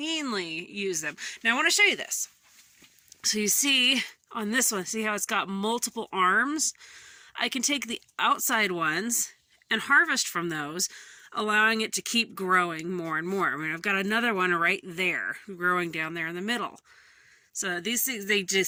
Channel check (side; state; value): both; identical; correlation 1.00